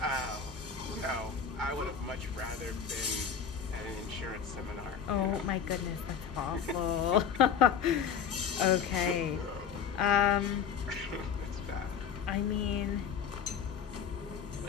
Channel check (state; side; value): quieter; right; 7.1 dB